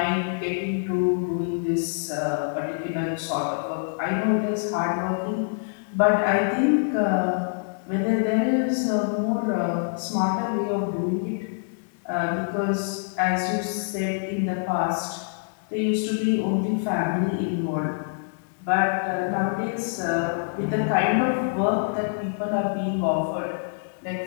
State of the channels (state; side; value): silent; right; digital silence